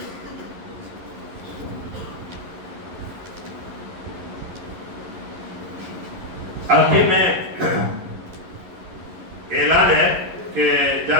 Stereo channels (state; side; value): late; left; 11 ms